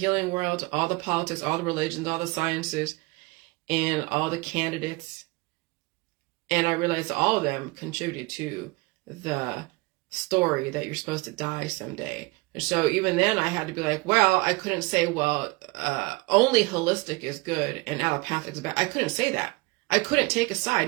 world, all the politics, all the religions, all the sciences, and all the candidates. And I realized all of them contributed to the story that you're supposed to die someday. And so even then I had to be like, well, I couldn't say, only holistic is good and allopathic is bad. I couldn't say that. I couldn't take a side.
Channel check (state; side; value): quieter; left; 25.4 dB